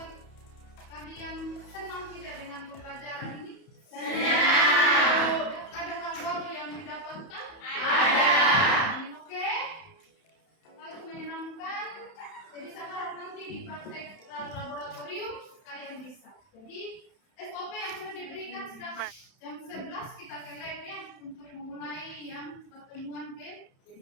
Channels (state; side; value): late; right; 31 ms